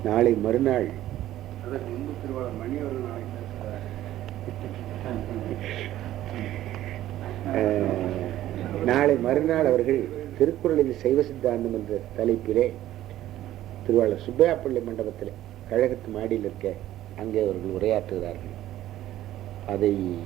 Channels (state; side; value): quieter; left; 13.7 dB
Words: நாளை மறுநாள் அதற்கு முன்பு திருவாளர் மணி அவர்கள் நாளை மறுநாள் அவர்கள் திருக்குறளில் சைவ சித்தாந்தம் என்ற தலைப்பிலே திருவாளர் சுப்பையா பிள்ளை மண்டபத்தில் கழகத்து மாடியில் இருக்க அங்கே அவர்கள் உரையாற்றுகிறார்கள். அதை